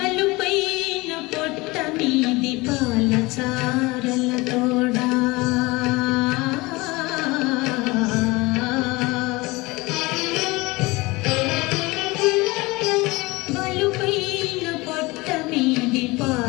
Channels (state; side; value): quieter; right; 22.7 dB